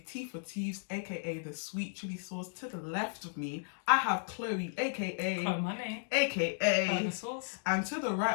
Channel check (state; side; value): silent; right; digital silence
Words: T for Teeves, aka the sweet chili sauce. To the left of me, I have Chloe, aka Money, aka the sauce. And to the